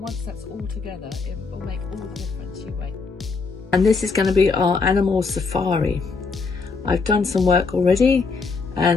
that's all together, it will make all the difference. You wait. And this is going to be our animal safari. I've done some work already,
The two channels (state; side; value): quieter; right; 4.6 dB